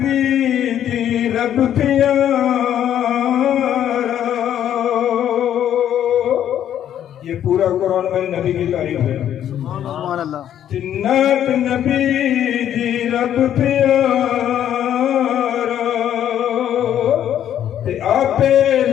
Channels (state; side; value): quieter; right; 10.5 dB